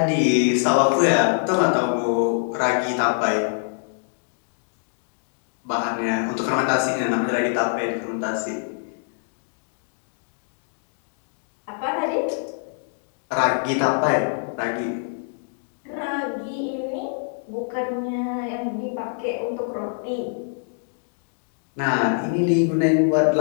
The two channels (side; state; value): right; silent; digital silence